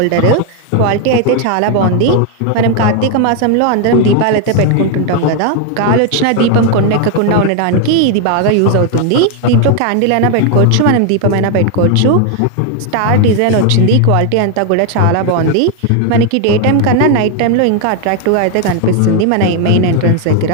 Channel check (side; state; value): both; different; correlation 0.01